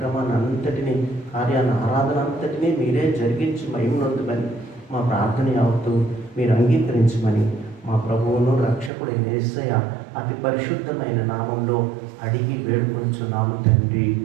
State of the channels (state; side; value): drops out; left; at 8.9 s